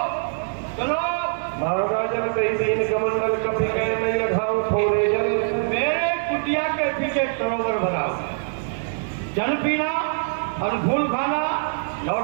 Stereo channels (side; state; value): left; silent; digital silence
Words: चलो महाराजन तीन कमंडल कभी कह नहीं रखाऊं थोड़े जल मेरे कुटिया के पीछे सरोवर बनाओ जल पीना और फूल खाना